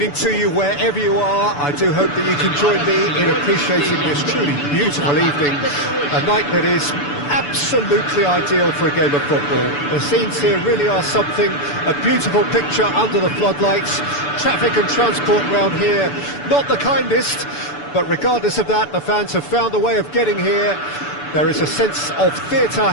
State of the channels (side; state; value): right; late; 6.9 ms